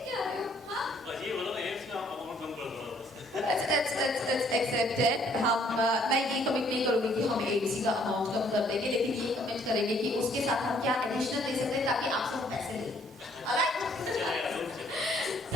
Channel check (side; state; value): both; normal; correlation 0.64